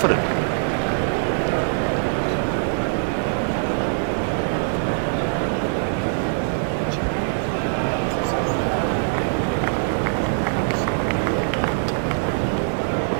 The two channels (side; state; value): left; silent; digital silence